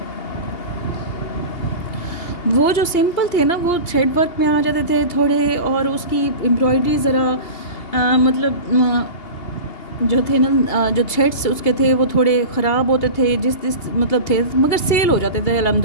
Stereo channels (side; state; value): right; late; 2.8 ms